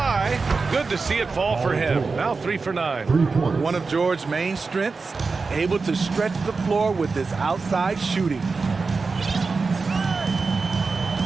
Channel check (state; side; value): quieter; left; 4.4 dB